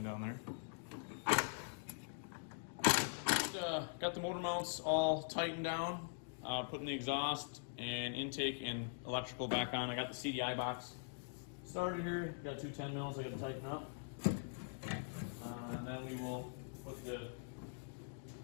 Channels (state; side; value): silent; right; digital silence